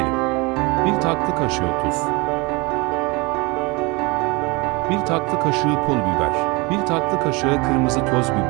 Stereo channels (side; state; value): left; quieter; 26.4 dB